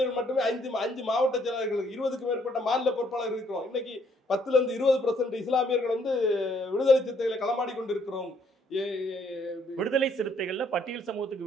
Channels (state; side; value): normal; both; correlation 0.67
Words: மட்டுமே 5 மாவட்ட செயலாளர்கள், 20க்கும் மேற்பட்ட மாநில பொறுப்பாளர்கள் இருக்கிறோம். இன்னைக்கு 10-20% இஸ்லாமியர்கள் விடுதலை சிறுத்தைகளை களமாடி கொண்டிருக்கிறோம். விடுதலை சிறுத்தைகள்ல பட்டியல்